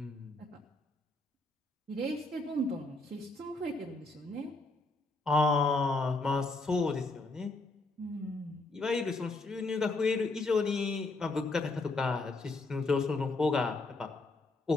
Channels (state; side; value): quieter; right; 3.2 dB